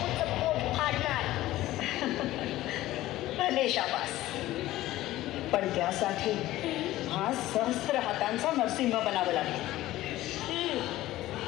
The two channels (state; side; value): quieter; right; 15.9 dB